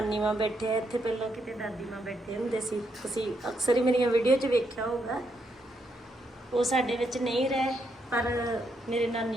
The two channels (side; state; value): both; normal; correlation 0.78